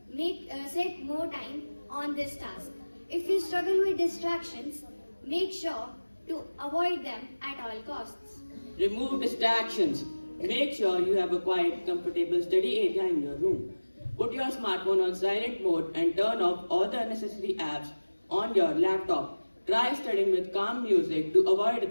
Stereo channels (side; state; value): both; inverted; correlation -1.00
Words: set more time on this task. If you struggle with distractions, make sure to avoid them at all costs. Remove distractions. Make sure you have a quiet, comfortable study area in your room. Put your smartphone on silent mode and turn off all the unnecessary apps on your laptop. Try studying with calm music to avoid